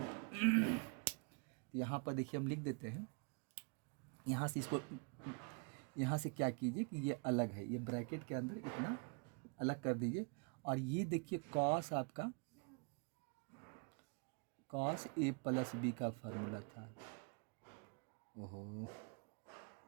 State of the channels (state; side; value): quieter; left; 35.7 dB